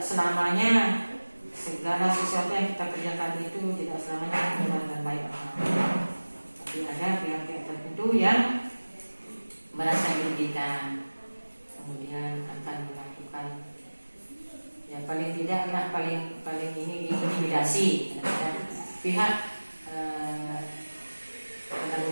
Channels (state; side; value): inverted; both; correlation -1.00